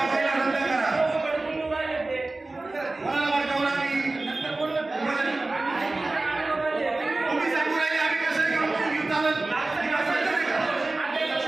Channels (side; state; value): left; quieter; 3.1 dB